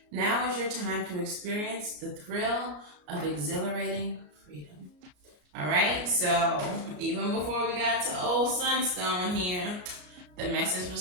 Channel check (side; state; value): left; late; 33 ms